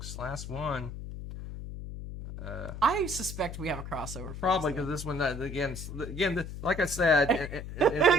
Last one. I suspect we have a crossover. Probably because this one, again, like I said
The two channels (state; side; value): noise; left; hum, 9 dB below the sound